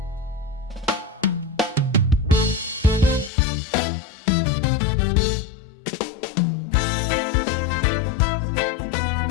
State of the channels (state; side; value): drops out; right; at 3.3 s